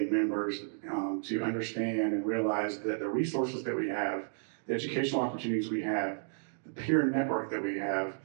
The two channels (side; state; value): left; silent; digital silence